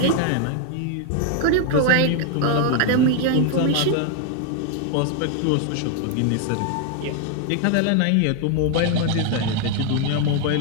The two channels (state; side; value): different; both; correlation 0.00